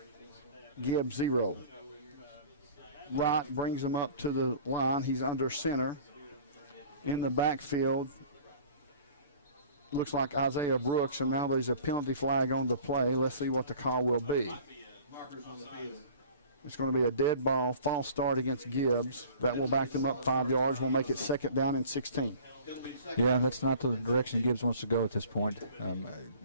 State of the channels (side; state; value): both; inverted; correlation -0.46